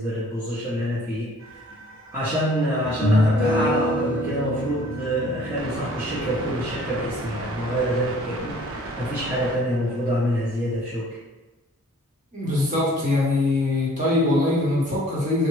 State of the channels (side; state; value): both; normal; correlation 0.54